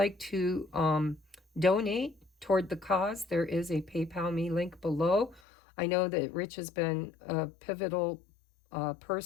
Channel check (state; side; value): drops out; right; at 5.4 s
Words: to donate toward the cause, there is a PayPal me link below. I know that Rich has been a pivotal